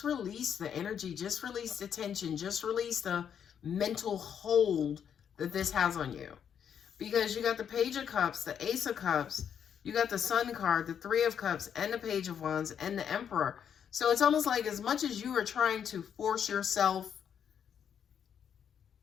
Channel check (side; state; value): right; quieter; 8.3 dB